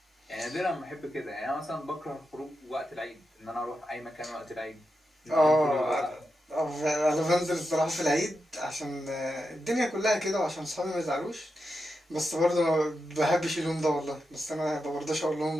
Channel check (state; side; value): normal; both; correlation 0.88